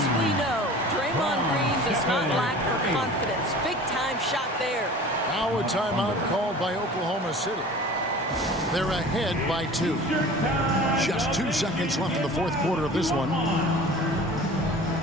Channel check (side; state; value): both; normal; correlation 0.41